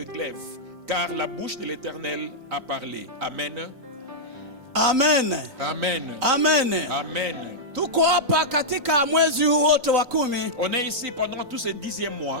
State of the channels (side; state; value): left; late; 3.9 ms